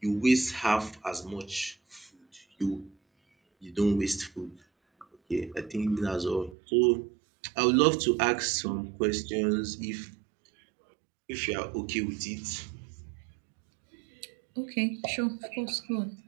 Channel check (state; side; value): drops out; left; at 6.6 s